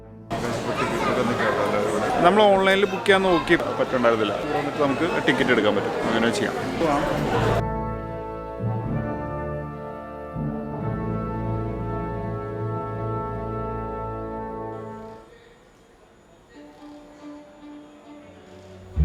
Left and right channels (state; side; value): identical; both; correlation 1.00